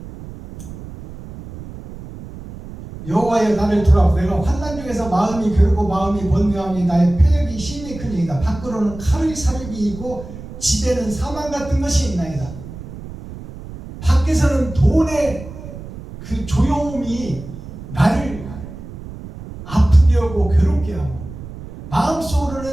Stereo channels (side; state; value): right; noise; rumble, 13 dB below the sound